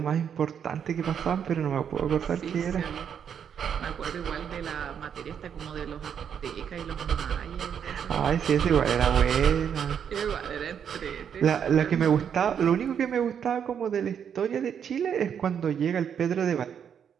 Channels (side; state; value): left; quieter; 8.0 dB